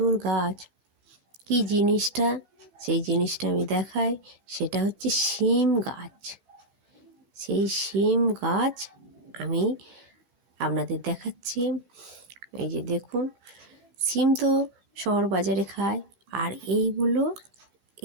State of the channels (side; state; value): left; late; 15 ms